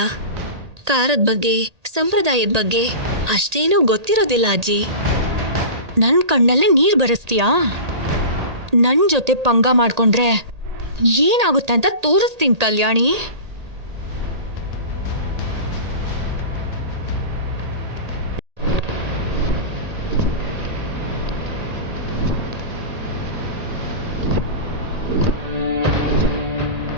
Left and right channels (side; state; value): left; late; 1.8 ms